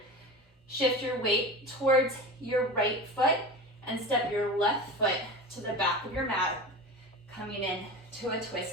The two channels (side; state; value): both; normal; correlation 0.30